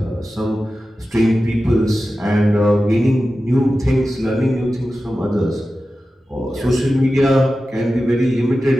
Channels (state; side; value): normal; both; correlation 0.94